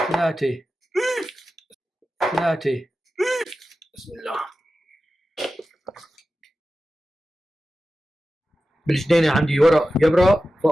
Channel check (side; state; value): both; normal; correlation 0.94